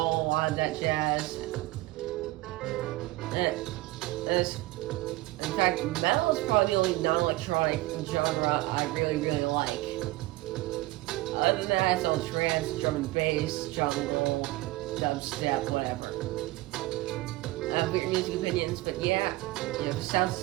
of that jazz. In fact, metal is probably the only non-electronic genre I really like. Other than that, it's all trance, drum and bass, jungle, dubstep, whatever. I have weird music opinions, but yeah, you have the sound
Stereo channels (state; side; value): quieter; left; 19.0 dB